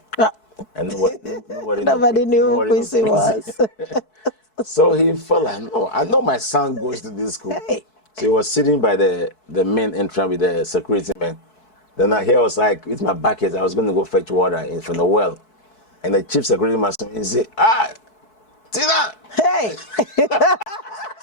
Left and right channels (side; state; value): right; late; 4.6 ms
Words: Ah. And Nobody knew who Quincy was. So he felt like, no, I know my son goes to this school. Hey. So he was sitting by the main entrance with the security man. Then I was like, with my bucket, I was going to go fetch water from the well. And the chief security man said, Tina! Hey.